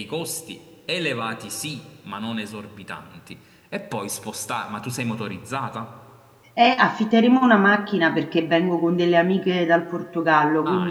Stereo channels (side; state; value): both; identical; correlation 1.00